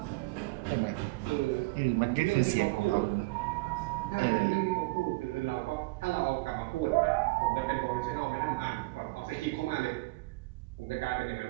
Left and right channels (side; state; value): left; quieter; 24.0 dB